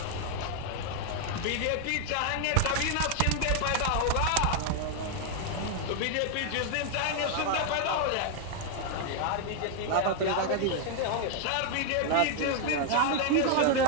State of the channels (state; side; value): different; both; correlation 0.00